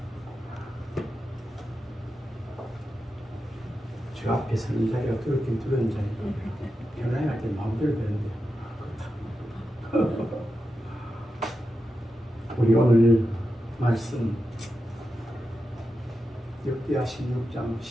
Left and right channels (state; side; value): normal; both; correlation 0.89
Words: 저 앞에 서는 자리가 그렇게 두려운 자리고 변화해 할 때 마음대로 되는데 우리 오늘 말씀 역대하 16장